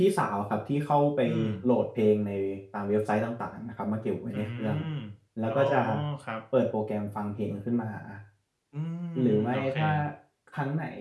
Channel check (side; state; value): both; identical; correlation 1.00